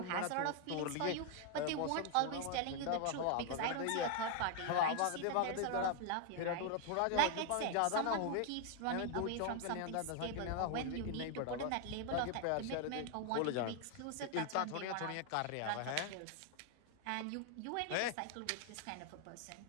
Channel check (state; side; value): different; both; correlation 0.00